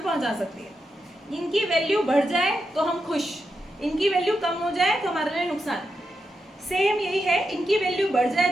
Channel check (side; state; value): both; normal; correlation 0.86